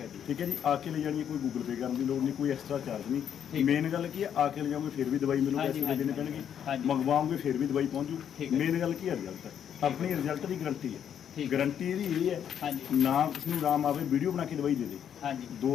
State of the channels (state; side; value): quieter; right; 8.9 dB